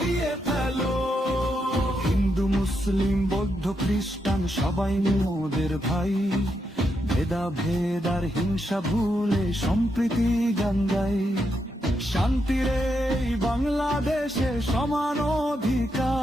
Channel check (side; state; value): both; normal; correlation 0.82